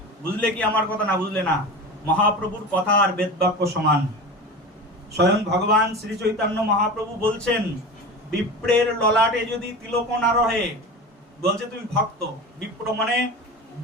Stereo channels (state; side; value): normal; both; correlation 0.29